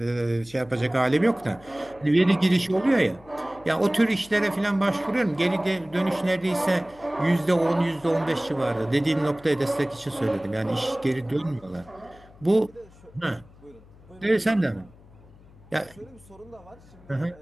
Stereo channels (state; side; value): noise; left; hum, 24 dB below the sound